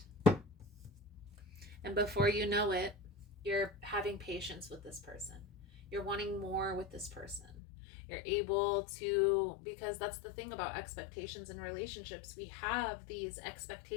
And before you know it, you're having patience with this person. You're wanting more with this person. You're able to, because that's the thing about expectations in relationships. We have these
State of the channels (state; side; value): drops out; right; at 7.5 s